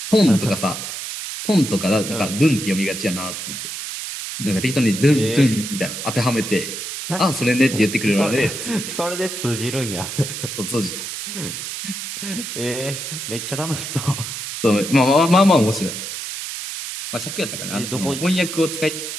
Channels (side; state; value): right; noise; hiss, 6 dB below the sound